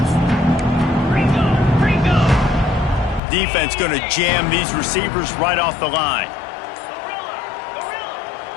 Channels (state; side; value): drops out; right; at 3.2 s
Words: Defense going to jam these receivers right off the line.